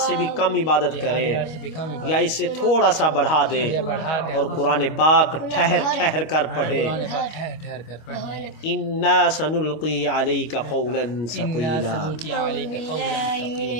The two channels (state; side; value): late; right; 25 ms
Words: بھی کم عبادت کرے یا اس سے تھوڑا سا بڑھا دے، اور قرآن پاک ٹھہر ٹھہر کر پڑھے۔ انا سنلقی علیک قولا ثقیلا۔